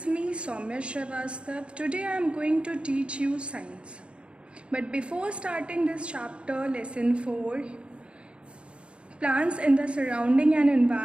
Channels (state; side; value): late; left; 0.058 ms